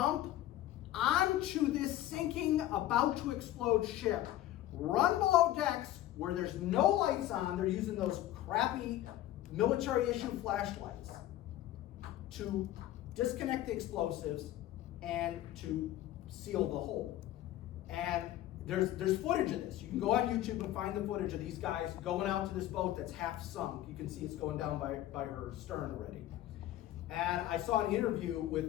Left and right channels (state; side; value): quieter; right; 13.9 dB